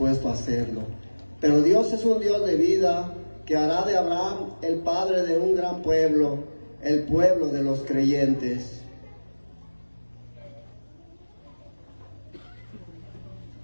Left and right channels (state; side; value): inverted; both; correlation -1.00